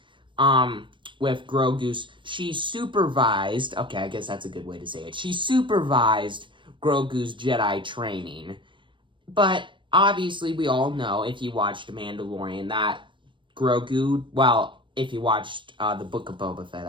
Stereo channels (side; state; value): left; late; 0.24 ms